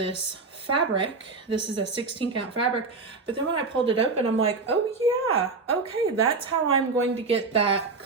fabric. This is a 16 count fabric, but then when I pulled it open, I'm like, oh yeah, okay, that's how I'm going to get that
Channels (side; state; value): left; quieter; 4.1 dB